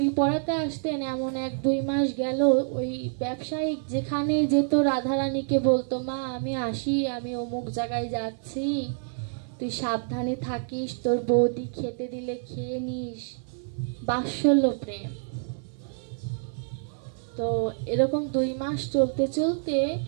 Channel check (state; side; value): silent; left; digital silence